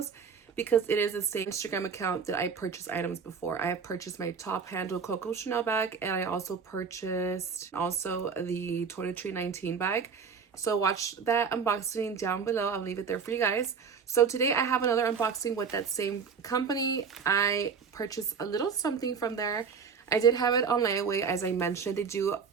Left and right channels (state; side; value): quieter; left; 6.0 dB